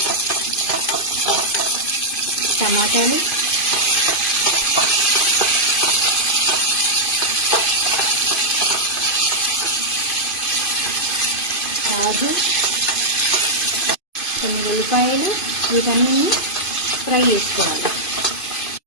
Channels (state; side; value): late; right; 2.5 ms